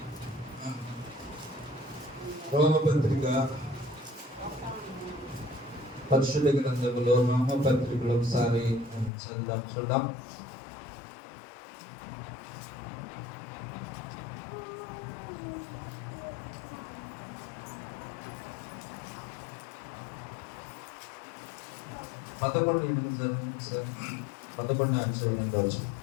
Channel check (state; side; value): drops out; right; at 9.1 s